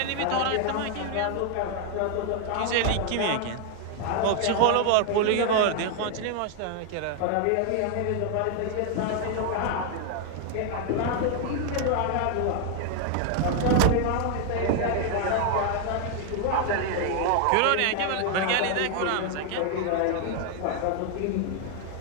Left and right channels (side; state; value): both; different; correlation 0.00